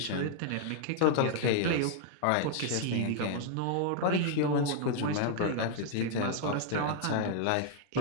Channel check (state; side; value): different; both; correlation 0.00